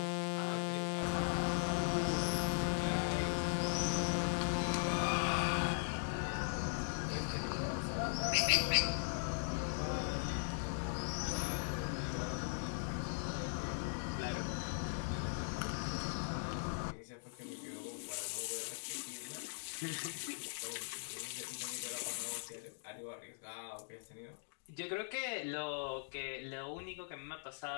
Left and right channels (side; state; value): right; silent; digital silence